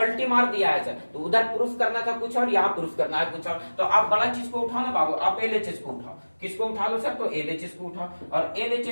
मार दिया है सर। तो उधर प्रूफ करना था कुछ और, यहाँ प्रूफ करना है कुछ और। तो आप बड़ा चीज को उठाओ ना बाबू, आप एलएचएस को उठाओ। किसको उठा लो सर, तो एलएचएस को उठाओ, और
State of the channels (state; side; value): inverted; both; correlation -1.00